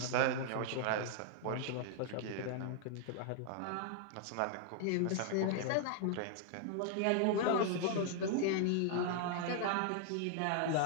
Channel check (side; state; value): both; different; correlation -0.01